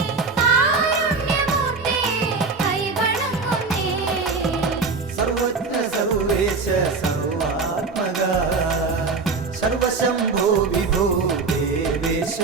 കാരുണ്യമൂർത്തേ കൈവണങ്ങുന്നേ സർവജ്ഞ സർവേശ സർവാത്മക സർവശംഭോ വിഭോ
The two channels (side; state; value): left; quieter; 4.3 dB